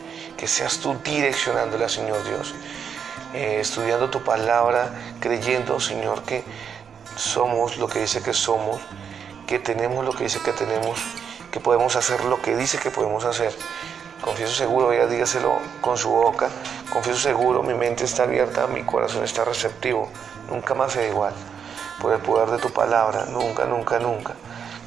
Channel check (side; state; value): left; quieter; 7.3 dB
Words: Que seas tú direccionándola, Señor Dios. Estudiando tu palabra, creyendo, Señor, que somos lo que dice que somos, que tenemos lo que dice que tenemos, que podemos hacer lo que dice que podemos hacer. Confieso seguro, ella dígaselo con su boca, confieso seguro, mi mente está abierta, mi corazón está receptivo, nunca más será igual. Por el poder de tu palabra, nunca, nunca, nunca,